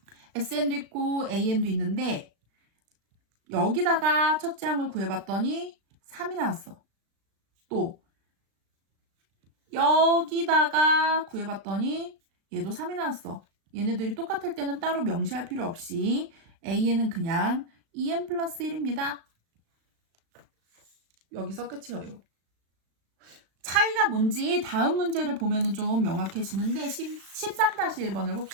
SN도 있고 AN도 있는데 여기다가 첫째 항을 구해봤더니 3이 나왔어. 또 여기다가 구해봤더니 얘도 3이 나왔어. 얘네들이 똑같을 때는 따로 명시할 필요 없이 AN은 그냥 2N 플러스 1입니다. 여기서 끝이에요. 차이가 뭔지 다음 문제를 보면 좀 명확해지는데 13-1번을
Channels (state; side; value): late; left; 36 ms